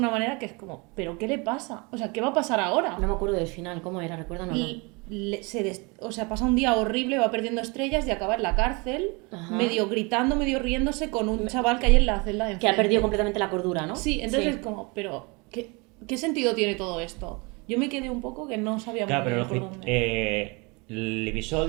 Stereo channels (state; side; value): quieter; left; 28.7 dB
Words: manera que es como, ¿pero qué le pasa? O sea, ¿qué va a pasar ahora? No me acuerdo del final, ¿cómo era? Recuérdame. O sea, pasa un día horrible, va perdiendo estrellas y acaba en la cárcel, Ajá. medio gritando, medio riéndose con un chaval que hay en la celda de Que ha enfrente. perdido completamente la cordura, ¿no? Sí, entonces es como, pero ¿qué sentido tiene todo esto? Yo me quedé un poco que no sabía Claro, muy pero bien por dónde. el